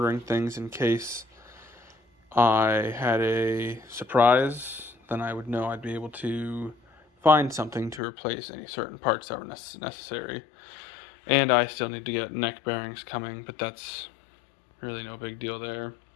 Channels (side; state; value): right; drops out; at 8.0 s